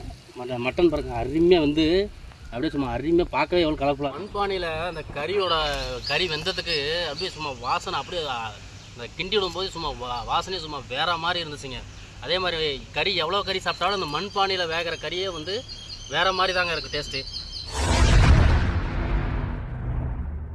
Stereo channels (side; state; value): both; identical; correlation 1.00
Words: மட்டன் பாருங்கள் அருமையாக வந்து அப்படியே சும்மா அருமையாக பார்க்கவே எவ்வளோ கலர்ஃபுல்லாக. மண்பானையில் அந்த கறி வெந்ததுக்கு அப்படியே சும்மா வாசனை அப்படியே அந்த கிண்டி விடும்போது சும்மா வாசனையே சும்மா வேறு மாதிரி இருந்துச்சுங்க. அதே மாதிரி கறி எவ்வளோ கறி சாப்பிட்டாலும் அந்த மண்பானையில் வேகிற கறியே வந்து வேறு மாதிரி தாங்க இருக்குது டேஸ்ட்டு.